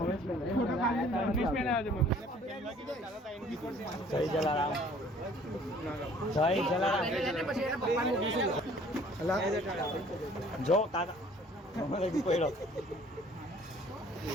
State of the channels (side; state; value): both; normal; correlation 0.55